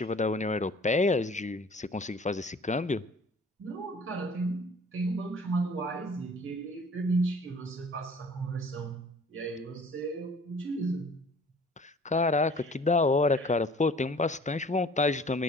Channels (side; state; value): both; normal; correlation 0.50